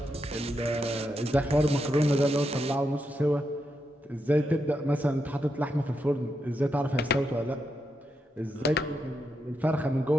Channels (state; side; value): normal; both; correlation 0.84